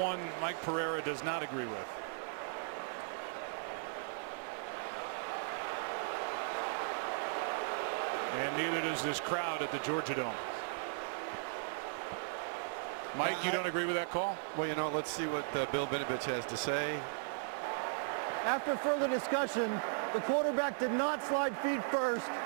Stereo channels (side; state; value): left; silent; 53 dB below the other